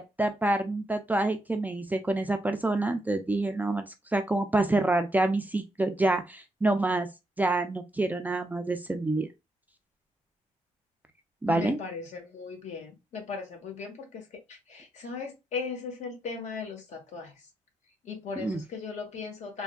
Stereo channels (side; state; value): both; normal; correlation 0.82